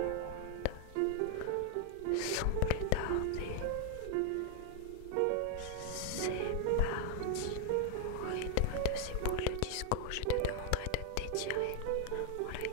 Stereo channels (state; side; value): different; both; correlation 0.00